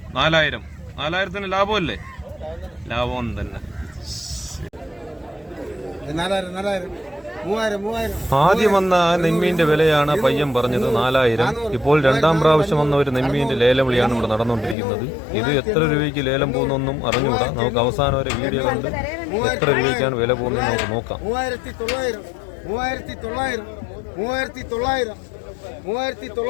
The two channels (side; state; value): right; drops out; at 14.8 s